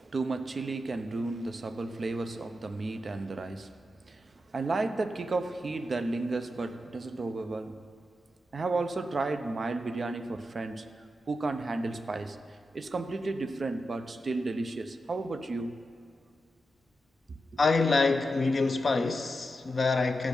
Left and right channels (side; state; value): both; normal; correlation 0.88